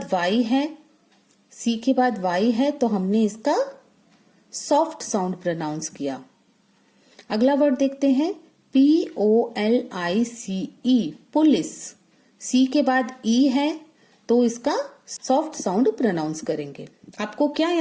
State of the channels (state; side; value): identical; both; correlation 1.00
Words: वाई है, सी के बाद वाई है तो हमने इसका सॉफ्ट साउंड प्रोनाउंस किया। अगला वर्ड देखते हैं POLICE, पुलिस। सी के बाद ई है तो इसका सॉफ्ट साउंड प्रोनाउंस करेंगे। आपको क्या